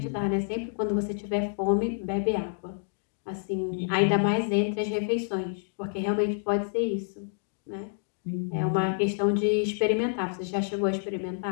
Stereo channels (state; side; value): silent; right; digital silence